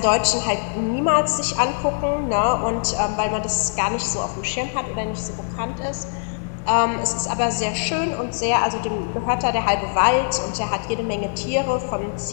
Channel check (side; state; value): right; silent; 64 dB below the other